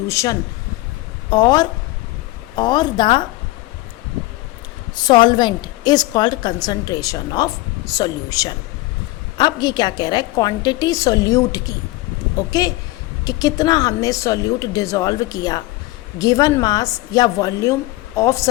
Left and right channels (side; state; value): right; quieter; 19.1 dB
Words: और the solvent is called concentration of solution. अब ये क्या कह रहा है, क्वांटिटी सॉल्यूट की, ओके, कि कितना हमने सॉल्यूट डिसॉल्व किया गिवन मास या वॉल्यूम ऑफ